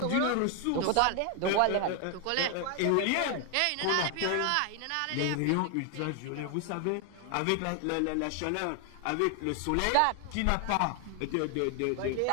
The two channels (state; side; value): different; both; correlation 0.00